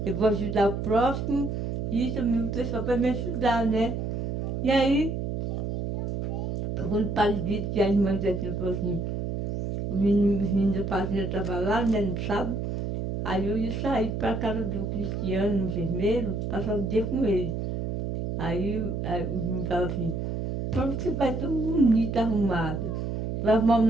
Eu vou ajudar o próximo e também o pessoal vai me ajudar, né? E aí, quando o padre disse que a irmã falou assim, os meninos da fazenda estavam lá, né, no sábado, aí eu ia sair para a casa do Cristiano, no enfermeiro, passar o dia com ele. Aí os meninos falaram assim, por que você vai tão bonita, arrumada? Vai arrumar um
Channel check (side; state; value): right; noise; hum, 3 dB below the sound